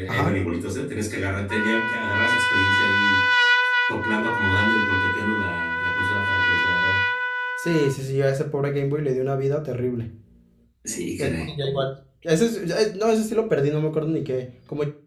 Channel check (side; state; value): both; identical; correlation 1.00